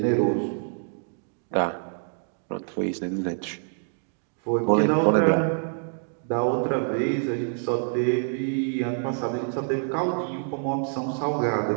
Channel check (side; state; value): left; silent; digital silence